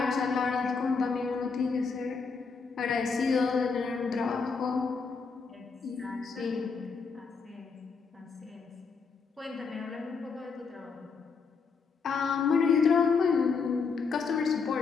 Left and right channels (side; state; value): right; quieter; 5.1 dB